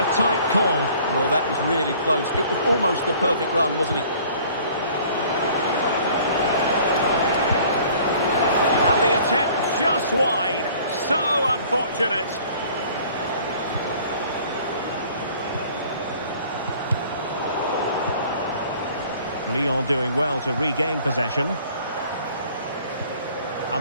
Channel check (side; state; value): both; inverted; correlation -0.52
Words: tight call. Well, that was really close. It was almost the perfect run, wasn't it? And the attempt just wide. So unfortunate. Lyon doing well to regain possession.